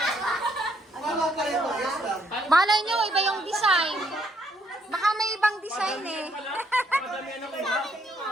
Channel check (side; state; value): both; normal; correlation 0.71